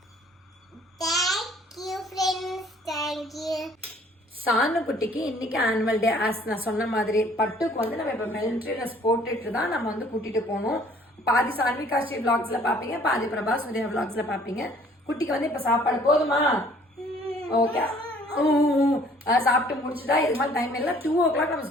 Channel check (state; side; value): normal; both; correlation 0.57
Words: சானு குட்டிக்கு இன்னைக்கு ஆனுவல் டே. ஆஸ் நான் சொன்ன மாதிரி பட்டுக்கு வந்து நம்ம இப்ப மிலிட்டரி ட்ரெஸ் போட்டுட்டு தான் நம்ம வந்து கூட்டிட்டு போகணும். பாதி சான்விகா ஸ்ரீ விளாக்ஸ்ல பாப்பீங்க, பாதி பிரபா சூர்யா விளாக்ஸ்ல பாப்பீங்க. குட்டிக்கு வந்து இப்ப சாப்பாடு போதுமா? ஓகே, சாப்பிட்டு முடிச்சுட்டா. இது மாதிரி டைம் இல்லை, 2 o'clock நம்ம